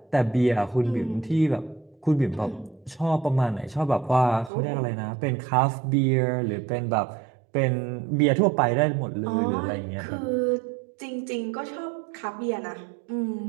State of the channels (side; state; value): left; drops out; at 4.5 s